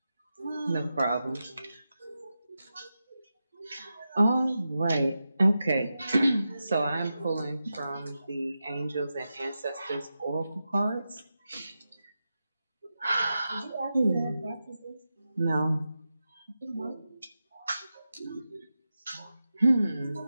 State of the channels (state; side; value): inverted; both; correlation -0.91